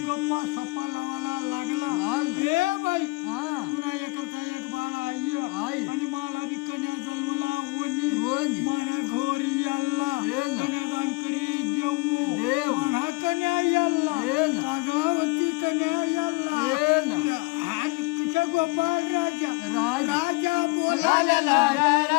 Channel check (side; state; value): right; quieter; 26.3 dB